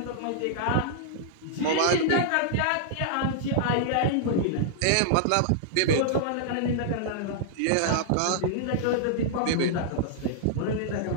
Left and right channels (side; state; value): both; different; correlation -0.02